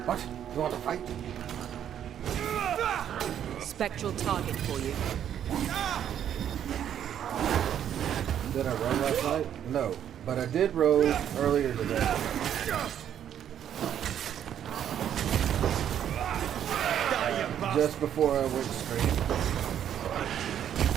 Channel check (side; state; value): left; quieter; 9.8 dB